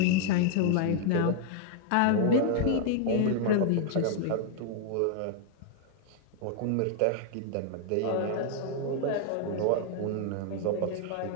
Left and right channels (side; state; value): both; different; correlation 0.00